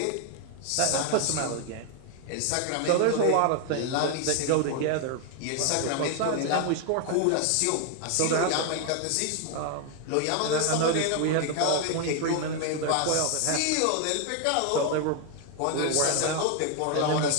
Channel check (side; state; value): both; different; correlation 0.00